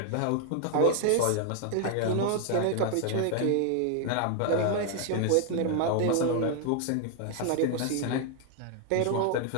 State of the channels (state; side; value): different; both; correlation 0.00